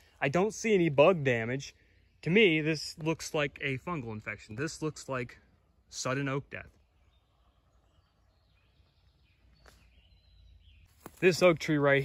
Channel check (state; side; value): identical; both; correlation 1.00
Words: I don't see any bug damage. To me, this looks like a fungal infection. This looks like sudden oak death. This oak tree right